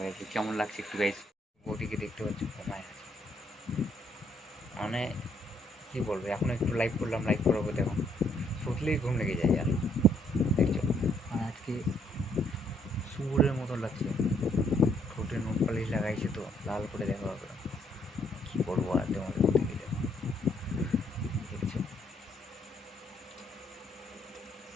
কেমন লাগছে একটু গাইস। বৌদিকে দেখতে পাচ্ছ ঘুমায় আছে, মানে কি বলবো। এখন একটু লাইভ করলাম, লাইভ করাবো দেখো, শুটলেই ঘুম লেগে যায় আর দেখছো। আর আজকে সুরের মতো লাগছে, ঠোঁটে নোট পালিশ লাগাইছে তো লাল করে দেখা হবে। কি বলবো আর তোমাদের প্রতি দেখো, দেখছো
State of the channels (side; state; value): both; normal; correlation 0.70